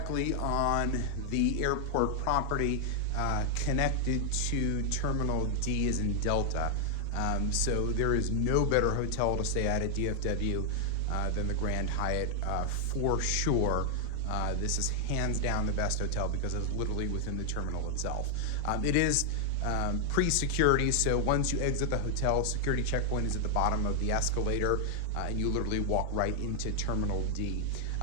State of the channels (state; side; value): different; both; correlation 0.00